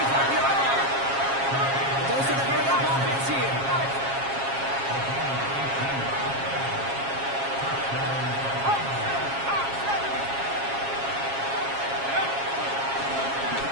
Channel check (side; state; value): left; late; 7.3 ms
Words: line. Goes to the hurry-up offense here.